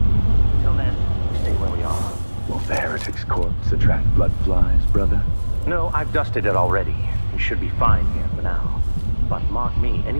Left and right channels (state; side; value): inverted; both; correlation -1.00